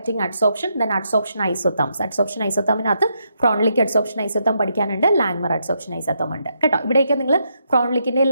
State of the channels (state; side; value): inverted; both; correlation -0.79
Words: adsorption, then adsorption isotherms. Adsorption ഐസോതേമിനകത്ത് ഫ്രോൺലിക് അഡ്സോപ്ഷൻ ഐസോതേം പഠിക്കാനുണ്ട്, ലാങ്മർ അഡ്സോപ്ഷൻ ഐസോതേം ഉണ്ട് കേട്ടോ. ഇവിടെയൊക്കെ നിങ്ങൾ ഫ്രോൺലിക്കിന്റെ